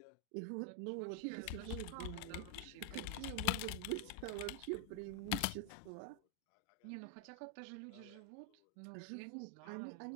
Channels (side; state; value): both; different; correlation 0.00